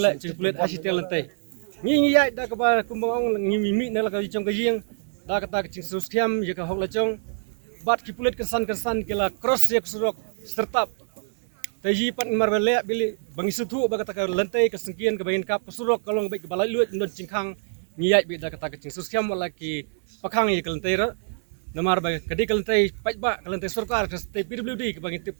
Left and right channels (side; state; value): left; silent; 62 dB below the other